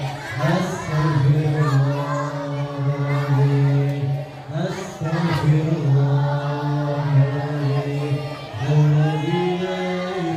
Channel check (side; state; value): both; identical; correlation 1.00